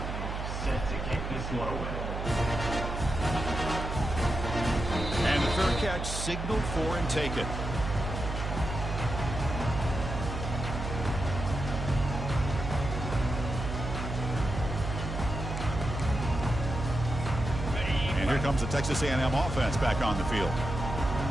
set to kick this one away. And the third catch signaled for and taken. And here comes the Texas A&M offense back on the field.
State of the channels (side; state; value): right; noise; hum, 4 dB below the sound